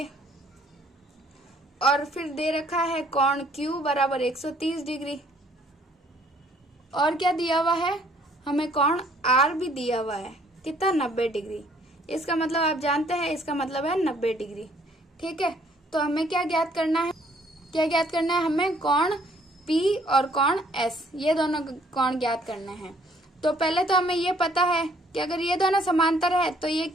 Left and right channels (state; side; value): normal; both; correlation 0.62